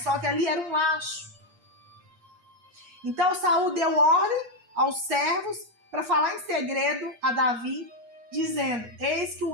que ali era um laço. Então Saul deu ordem aos servos para falar em segredo a Davi, dizendo: eis que o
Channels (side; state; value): left; late; 8.4 ms